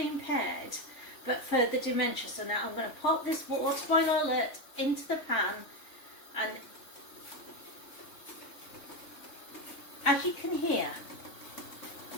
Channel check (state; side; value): late; right; 3.3 ms